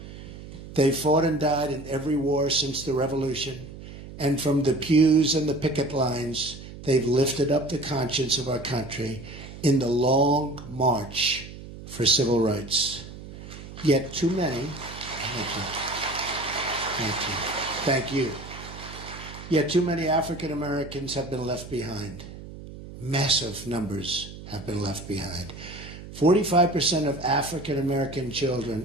They fought and died in every war since the Revolution, and from the pews and the picket lines, they've lifted up the conscience of our country in the long march for civil rights. Yet too many, thank you. Yet too many African Americans have been left behind. Massive numbers have been left behind. 45% of African American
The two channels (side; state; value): right; noise; hum, 14 dB below the sound